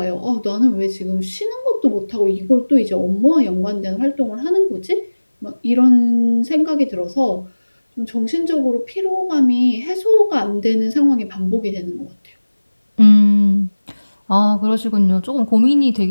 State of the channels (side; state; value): both; inverted; correlation -1.00